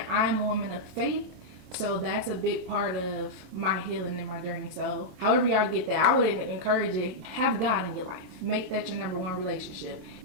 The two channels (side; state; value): left; late; 27 ms